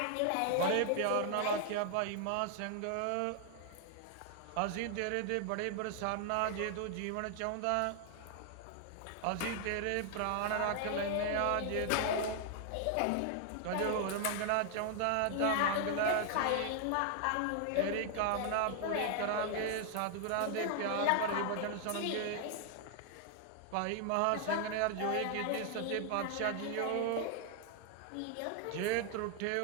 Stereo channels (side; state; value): both; different; correlation 0.00